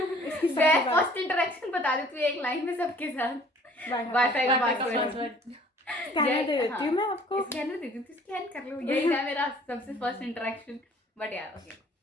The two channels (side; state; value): both; normal; correlation 0.54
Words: फर्स्ट इंटरेक्शन बता देती हूँ एक लाइन में सबके साथ. वाईफाई का पासवर्ड स्कैनर दे देती हूँ मैं आपको. स्कैनर दे देती हूँ. स्कैन कर लो. यही था मेरा सबसे फर्स्ट इंटरेक्शन. बट यार ओके.